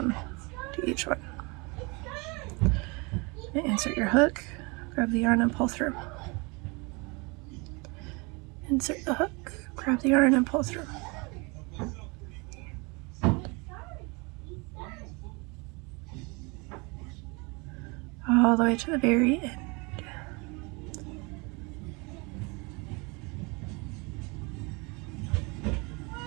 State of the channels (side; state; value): left; quieter; 28.6 dB